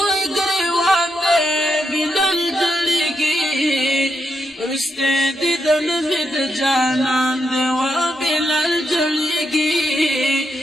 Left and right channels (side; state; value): both; normal; correlation 0.83